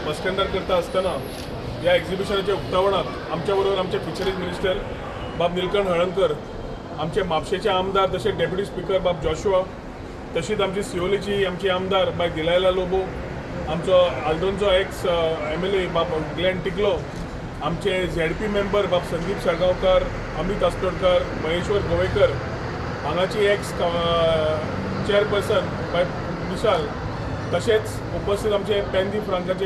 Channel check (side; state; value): both; identical; correlation 1.00